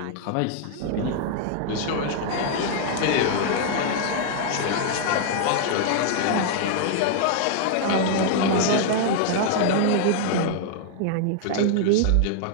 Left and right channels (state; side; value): different; both; correlation 0.00